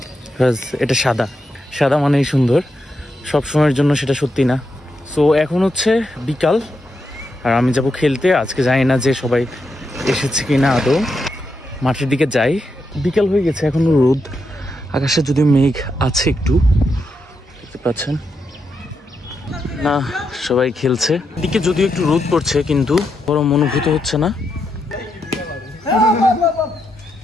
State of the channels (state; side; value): normal; both; correlation 0.83